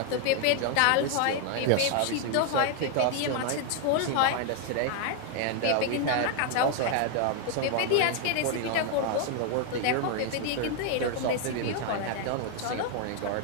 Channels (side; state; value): both; different; correlation 0.00